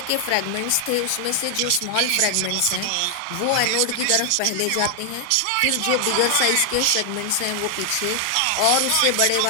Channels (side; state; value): both; different; correlation 0.00